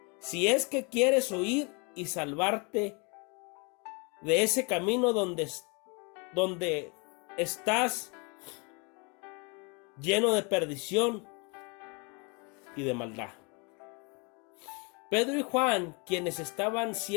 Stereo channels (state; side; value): quieter; right; 31.7 dB